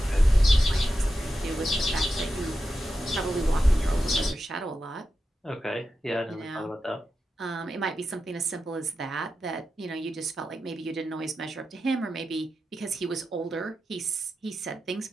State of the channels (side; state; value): both; normal; correlation 0.90